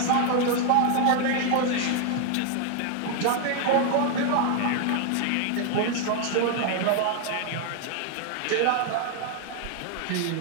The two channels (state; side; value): different; both; correlation 0.00